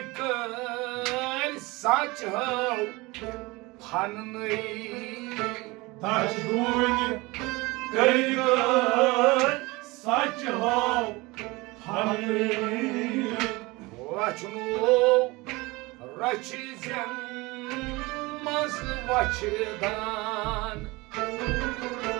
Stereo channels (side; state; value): left; quieter; 23.1 dB